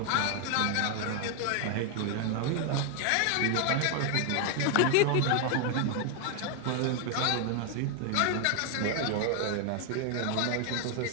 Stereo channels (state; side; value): different; both; correlation 0.00